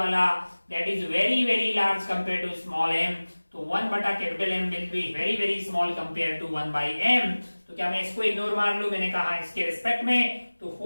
that is very very large compare to small m, तो 1 बटा capital M will be very very small compare to 1 by m। तो क्या मैं इसको इग्नोर मार लूं? मैंने कहा इसके रिस्पेक्ट में, तो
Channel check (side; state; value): both; inverted; correlation -1.00